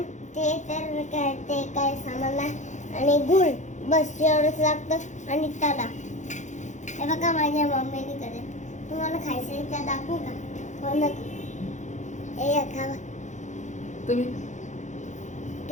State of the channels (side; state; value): right; late; 0.35 ms